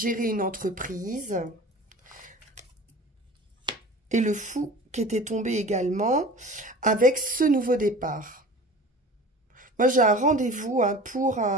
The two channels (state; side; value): normal; both; correlation 0.39